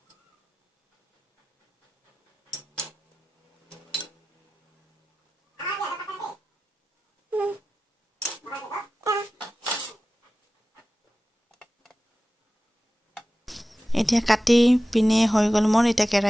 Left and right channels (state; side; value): normal; both; correlation 0.95